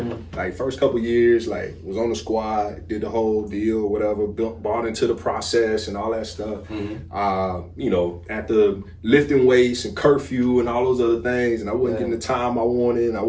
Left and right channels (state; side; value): identical; both; correlation 1.00